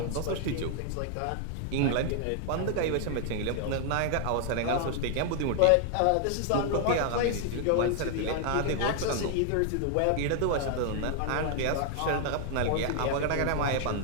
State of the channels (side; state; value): both; different; correlation 0.00